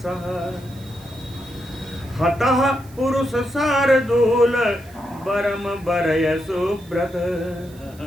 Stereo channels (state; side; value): noise; right; hiss, 25 dB below the sound